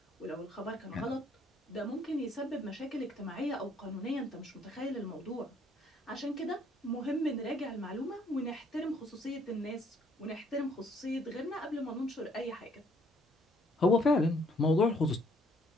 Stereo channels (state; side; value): normal; both; correlation 0.65